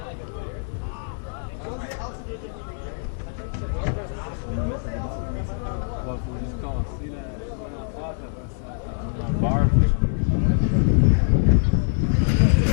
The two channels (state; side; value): silent; right; 62 dB below the other